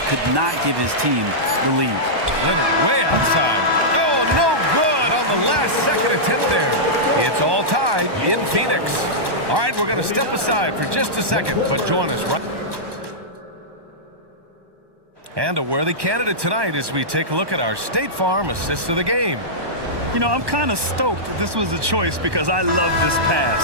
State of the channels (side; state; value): left; late; 1.2 ms